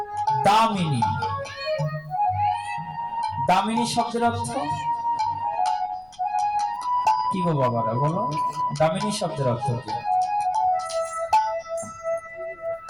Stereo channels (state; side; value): noise; left; rumble, 29 dB below the sound